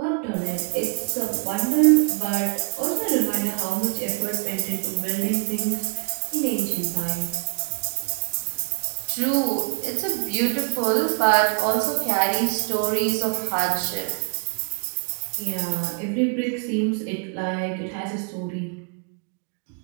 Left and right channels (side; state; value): left; quieter; 38.4 dB